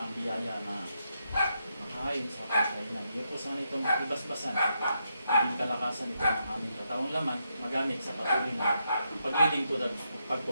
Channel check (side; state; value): both; inverted; correlation -0.82